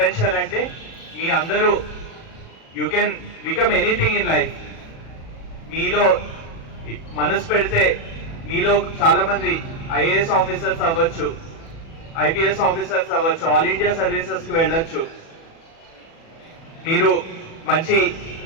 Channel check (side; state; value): right; late; 36 ms